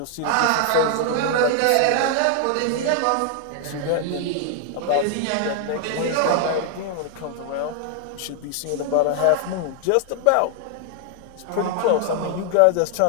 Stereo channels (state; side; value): different; both; correlation 0.00